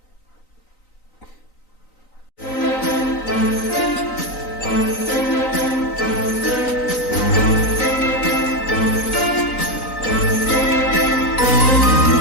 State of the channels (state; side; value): late; right; 3.9 ms